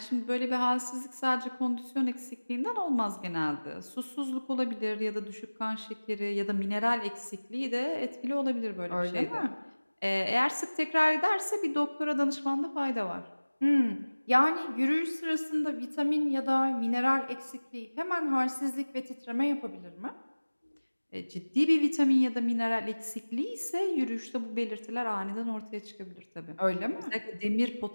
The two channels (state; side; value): inverted; both; correlation -1.00